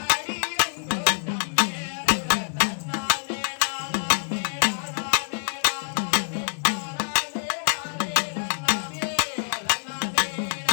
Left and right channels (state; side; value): silent; right; digital silence